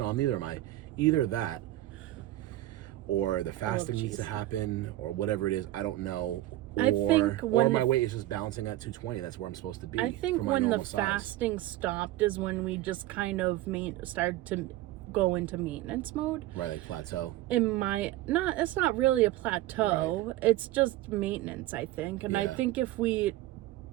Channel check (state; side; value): quieter; left; 15.7 dB